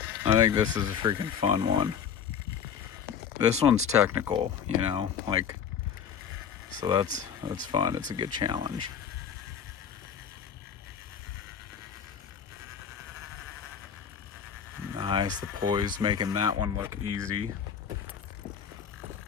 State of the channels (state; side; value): quieter; right; 7.7 dB